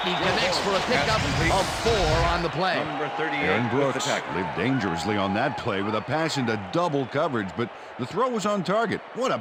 he connects for a pickup of 4 on the play. Number 38. Aaron Brooks lived dangerously on that play with a pass into double coverage, but the throw was on target. What a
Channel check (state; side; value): identical; both; correlation 1.00